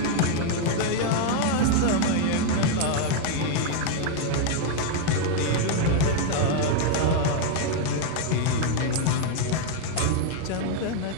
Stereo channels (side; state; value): both; different; correlation 0.00